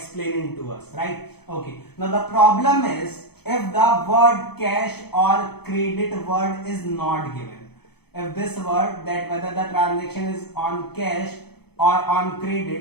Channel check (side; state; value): right; late; 0.97 ms